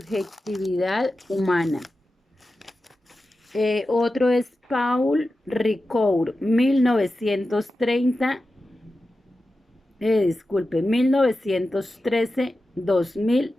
humana. Otro es Paul Ricoeur,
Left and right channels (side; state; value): both; normal; correlation 0.93